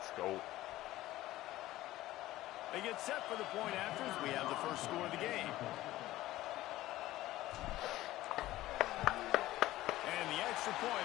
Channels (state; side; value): quieter; right; 16.1 dB